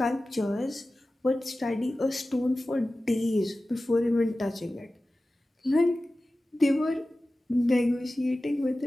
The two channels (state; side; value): normal; both; correlation 0.96